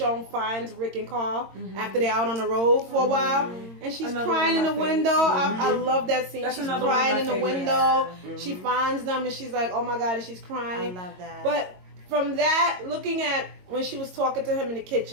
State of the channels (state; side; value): late; left; 22 ms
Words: finds Rick and Carl after they're out on the road for a while, and she's Another crying in one the of my window. I love that scene. That's she's another one of crying my in the favorites. window. She finds them and she's like, oh my God, and she's I crying. love that. But from that, looking at when she was talking to him in the